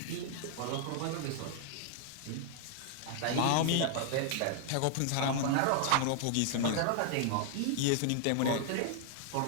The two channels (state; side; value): different; both; correlation 0.00